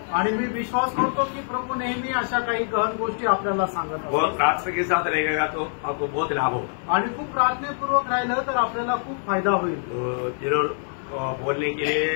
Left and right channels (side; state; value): right; silent; 62 dB below the other